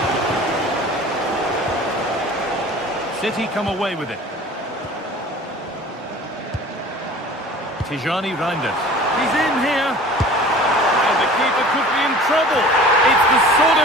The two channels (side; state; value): both; normal; correlation 0.43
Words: City come away with it. Tijani Reinders. He's in here. And the keeper could be in trouble. It's the sort